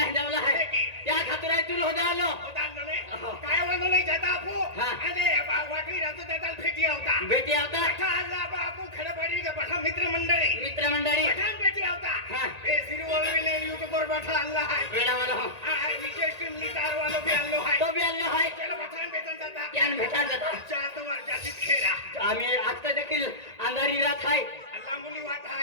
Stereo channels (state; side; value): late; left; 1.9 ms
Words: जावला आहे त्या खातर आहे तुला होता आलो होता आणलं नाही काय म्हणलं नाही जाता आपू हा. आणि वाटवी राजू दादा भेटी होता भेटी आवता पठा आला बापू खरं पाहिजे पठा मित्रमंडळी मित्रमंडळी पठाण भेटी होता हा. हे सिरिवळीने युट्यूब वर पठा आणला आहे वेळावाला हो हा विशेष टीम स्टार वालो भी आणलो आहे तो बी आलो आहे चलो पठाण भेटून जाता त्यान भेटा जाता चार वर्षाची खेळा आम्ही आता देखील अंधारी रात आहे लांबुली वाट